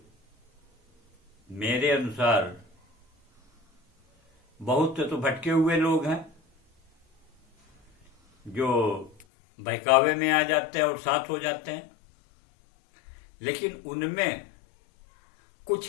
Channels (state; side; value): drops out; right; at 9.2 s